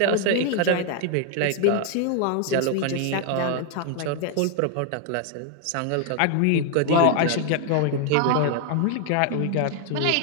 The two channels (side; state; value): both; different; correlation 0.00